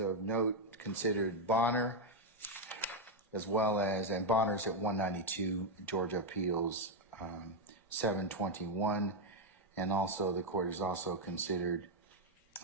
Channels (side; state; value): both; normal; correlation 0.03